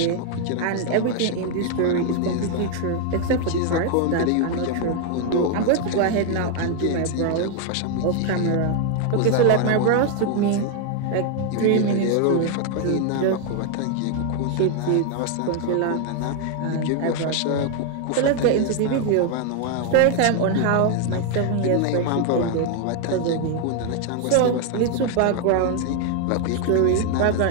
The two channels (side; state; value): both; different; correlation 0.00